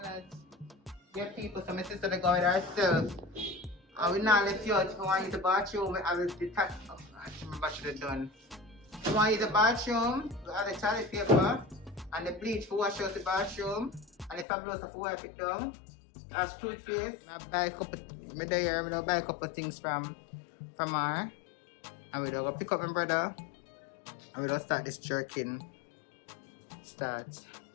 that. Get people, so my sister they go with herself. And we not left you out. If you want to use the bathroom, I will detach. Oh, I remember I should have done. If you want to use the bathroom, we have the toilet paper and the bleach for wash out the bathroom. And the fabuloso for wipe it down. That's toothpaste. I buy a couple things from her. And we go pick up my brother. And we don't start this jerking.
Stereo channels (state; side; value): drops out; right; at 14.5 s